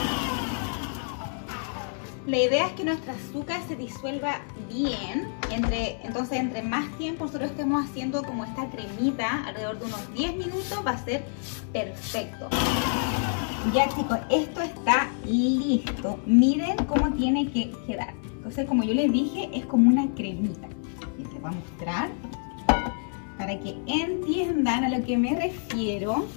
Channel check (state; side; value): silent; right; 60 dB below the other